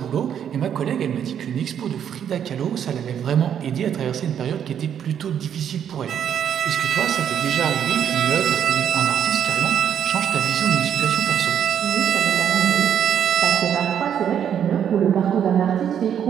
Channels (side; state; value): left; quieter; 9.0 dB